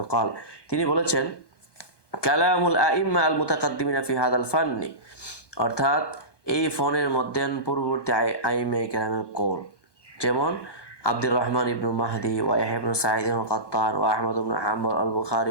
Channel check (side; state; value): right; late; 1.2 ms